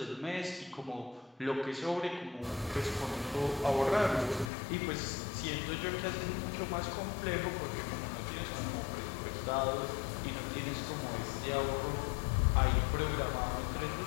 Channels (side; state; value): right; drops out; at 4.5 s